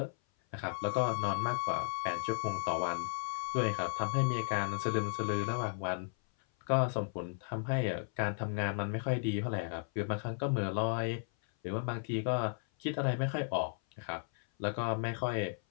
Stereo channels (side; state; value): right; silent; 55 dB below the other